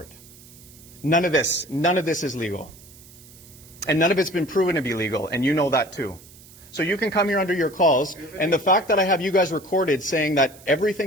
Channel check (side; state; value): right; noise; hiss, 22 dB below the sound